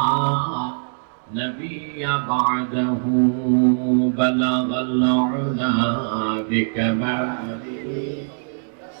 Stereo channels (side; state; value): left; silent; 63 dB below the other